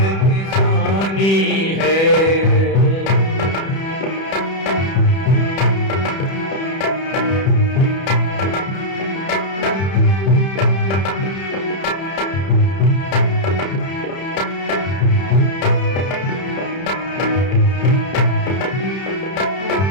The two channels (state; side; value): late; right; 31 ms